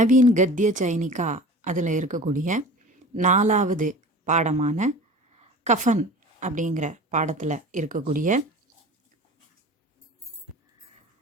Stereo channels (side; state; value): both; normal; correlation 0.39